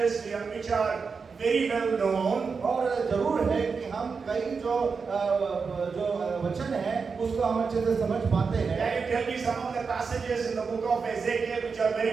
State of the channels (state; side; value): quieter; left; 5.2 dB